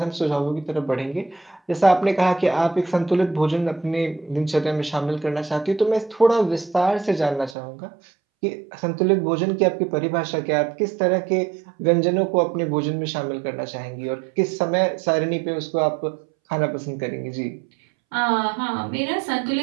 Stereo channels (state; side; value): drops out; left; at 7.6 s